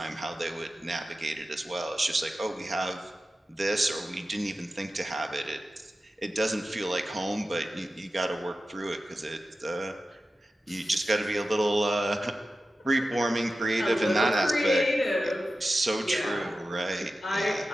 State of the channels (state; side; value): normal; both; correlation 0.93